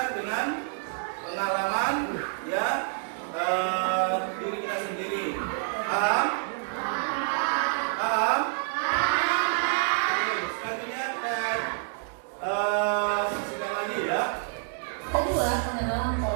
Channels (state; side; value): silent; left; digital silence